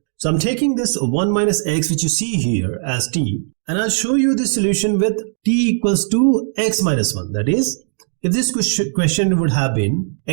So I'm taking this 1 minus x which you see here as t, and I'll show you the solution with t equals to x minus 1. That is, if this question would have been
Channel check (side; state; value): left; silent; digital silence